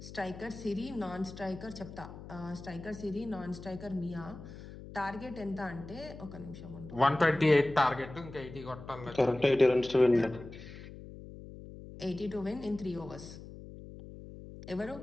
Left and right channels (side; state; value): left; noise; hum, 14 dB below the sound